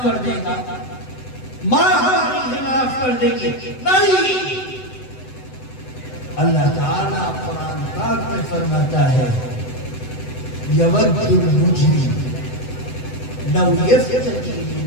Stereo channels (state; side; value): late; right; 7.9 ms